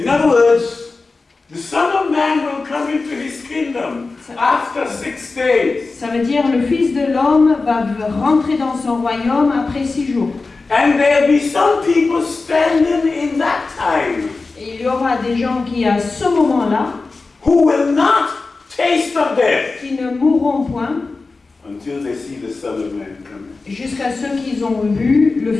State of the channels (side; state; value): right; quieter; 3.8 dB